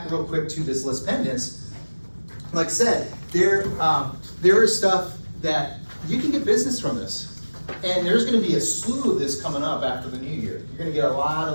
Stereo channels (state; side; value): inverted; both; correlation -1.00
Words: real quick to this list pendants, like I said, there is stuff that you can get business from this. And there's gonna be a slew of this coming up after the new year. You're gonna get a lot